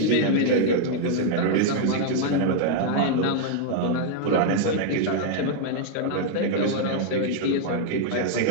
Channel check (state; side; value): different; both; correlation -0.01